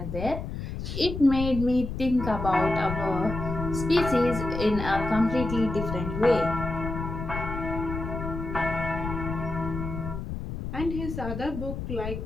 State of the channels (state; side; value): noise; left; rumble, 6 dB below the sound